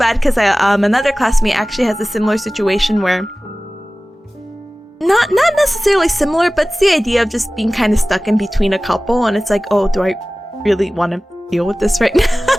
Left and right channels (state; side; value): normal; both; correlation 0.98